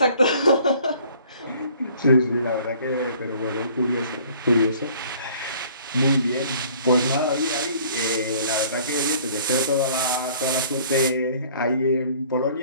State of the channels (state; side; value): inverted; both; correlation -0.54